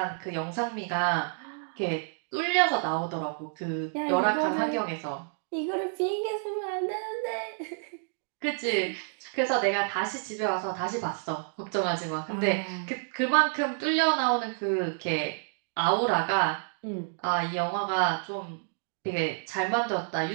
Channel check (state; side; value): silent; left; digital silence